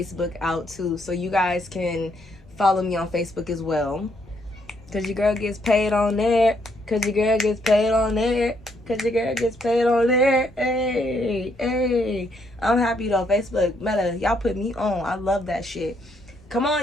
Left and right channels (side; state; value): both; normal; correlation 0.72